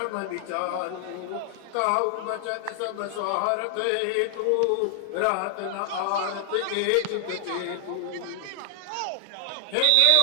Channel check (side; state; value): both; different; correlation 0.00